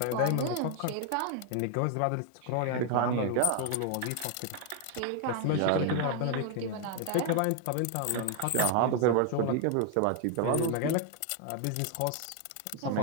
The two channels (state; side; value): different; both; correlation 0.00